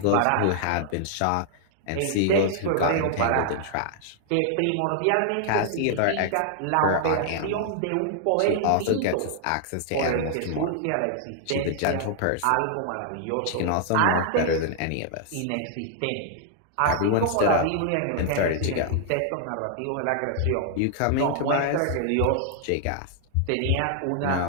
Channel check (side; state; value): both; different; correlation 0.00